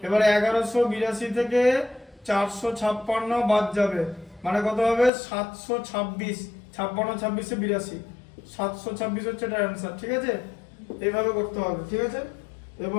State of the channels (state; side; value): drops out; right; at 5.1 s